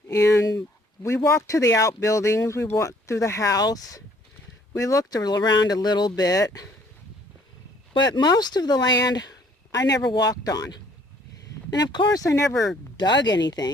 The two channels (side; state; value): both; normal; correlation 0.60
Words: and we walked to the outbuildings, we walked through the house, we looked around a little bit, but most of the land I never walked on. And of course I never dug